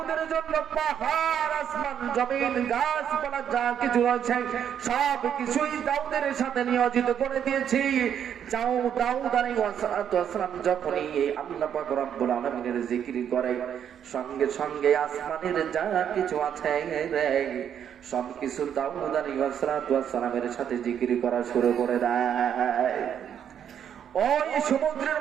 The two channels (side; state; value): left; quieter; 8.9 dB